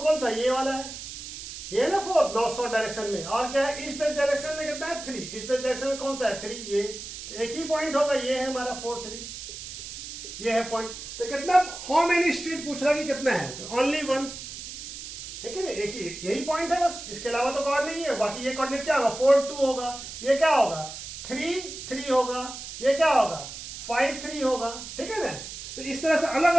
कौन सा, ये वाला है, ये ना 4 नॉर्थ साउथ डायरेक्शन में। और क्या है, ईस्ट वेस्ट डायरेक्शन में कितना है 3, ईस्ट वेस्ट डायरेक्शन में कौन सा है 3, ये। तो एक ही पॉइंट होगा, ये है हमारा 4 3, ये है पॉइंट। तो कितना, हाउ मेनी स्ट्रीट पूछ रहा कि कितना है, तो ओनली 1 है कि नहीं, एक ही यही पॉइंट है बस, इसके अलावा तो और नहीं है। बाकी ये कोऑर्डिनेट क्या होगा, 4 2 होगा, ये क्या होगा 3 3 होगा, ये क्या होगा 5 3 होगा, ठीक है ना। तो इस तरह से अलग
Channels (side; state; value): right; noise; hiss, 10 dB below the sound